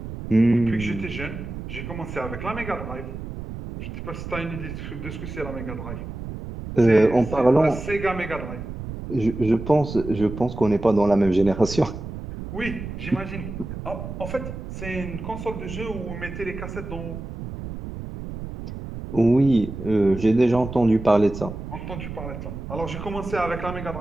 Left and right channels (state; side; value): noise; right; rumble, 9 dB below the sound